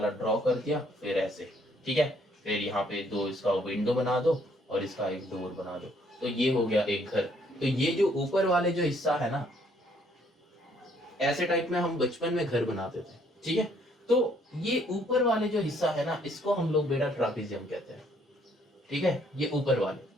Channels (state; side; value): normal; both; correlation 0.66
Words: ड्रॉ कर दिया, फिर ऐसे, ठीक है। फिर यहाँ पे दो इसका विंडो बना दो और इसका एक डोर बना दो, तो ये हो गया एक घर। तो ये जो ऊपर वाले जो हिस्सा है ना, ऐसे टाइप में हम बचपन में घर बनाते थे, ठीक है। तो ये ऊपर वाले जो हिस्सा है ना, इसको हम लोग बेटा ट्रापेजियम कहते हैं, ठीक है। ये ऊपर वाले,